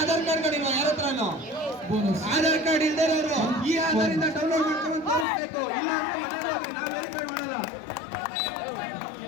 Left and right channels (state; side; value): drops out; right; at 5.2 s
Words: ಆಧಾರ್ ಕಾರ್ಡ್ ಗಳಿಲ್ವ ಯಾರ ಹತ್ರನೂ? ಆಧಾರ್ ಕಾರ್ಡ್ ಇಲ್ದೇ ಇರೋರು ಈ ಆಧಾರಿಂದ ಡೌನ್ಲೋಡ್ ಮಾಡ್ಕೊಂಡು ತೋರಿಸ್ಬೇಕು. ಇಲ್ಲ ಅಂದ್ರೆ ಮನೆಗೆ ಹೋಗ್ರಿ, ನಾವು ವೆರಿಫೈ ಮಾಡಲ್ಲ.